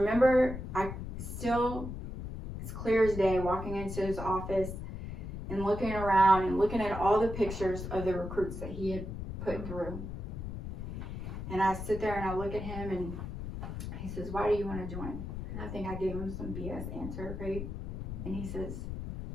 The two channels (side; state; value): left; noise; rumble, 7 dB below the sound